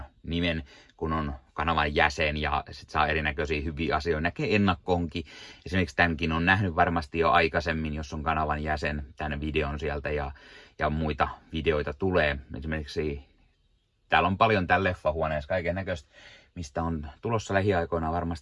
nimen, kun on kanavan jäsen ja sit saa erinäköisiä hyviä asioita. Näkee ennakkoonkin. Esimerkiksi tämänkin on nähnyt varmasti jo aikaisemmin, jos on kanavan jäsen, tämän videon sieltä ja muita videoita tulee. Esimerkiksi täällä on paljon täällä leffahuoneessa kaiken näköistä, mistä on tulossa lähiaikoina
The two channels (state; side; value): identical; both; correlation 1.00